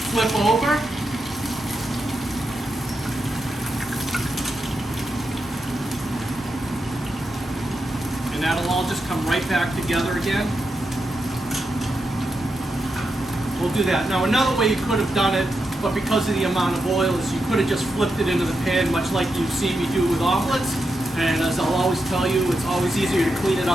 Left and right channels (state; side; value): normal; both; correlation 0.86